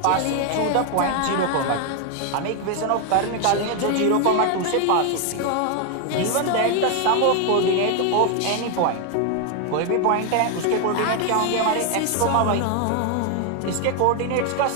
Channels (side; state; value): both; different; correlation 0.01